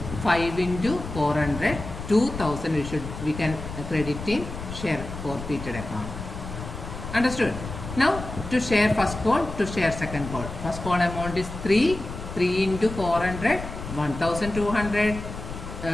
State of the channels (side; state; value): left; noise; rumble, 9 dB below the sound